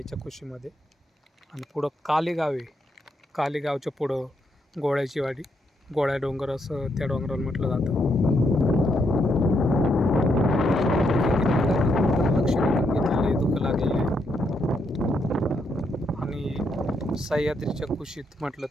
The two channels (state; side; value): normal; both; correlation 0.78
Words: कुशीमध्ये. आणि पुढं कालेगाव आहे. कालेगावच्या पुढं गोळ्याची वाडी, गोळ्या डोंगर असं त्या डोंगराला म्हटलं जातं. लक्ष घेतलेले दुःख लागलेले आहे. आणि सह्याद्रीच्या कुशीत म्हटलं